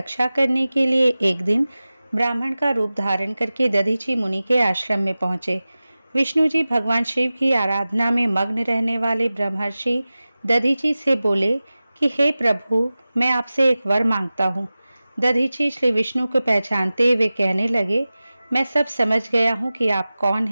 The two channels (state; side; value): inverted; both; correlation -0.96